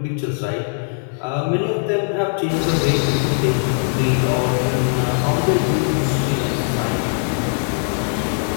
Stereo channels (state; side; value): silent; right; 66 dB below the other